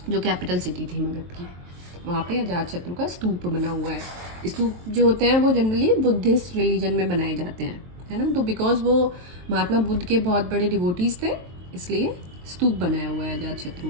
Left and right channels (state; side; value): late; left; 23 ms